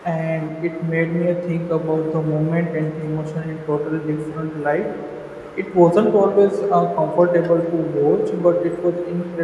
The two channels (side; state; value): both; identical; correlation 1.00